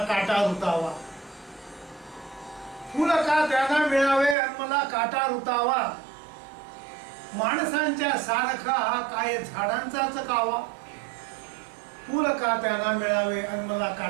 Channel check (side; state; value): left; drops out; at 4.4 s